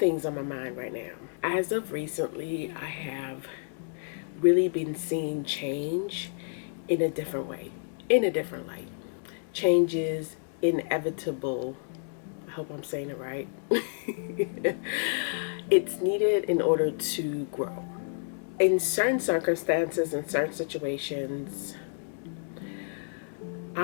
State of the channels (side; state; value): right; silent; digital silence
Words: on my mind right now. As of recently, I have really been seeing change in a different way, in a different light. Change is inevitable. I hope I'm saying it right. It's needed in order to grow. In certain circumstances, in certain situations,